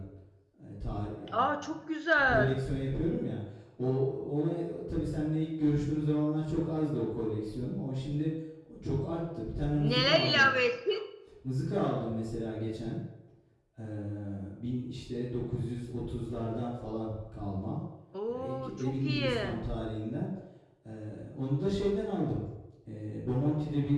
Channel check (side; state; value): both; identical; correlation 1.00